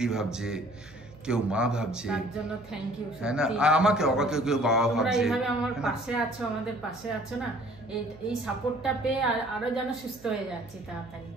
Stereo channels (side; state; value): right; noise; hum, 22 dB below the sound